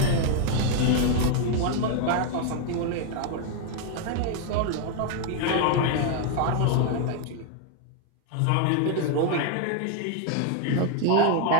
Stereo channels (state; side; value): different; both; correlation 0.01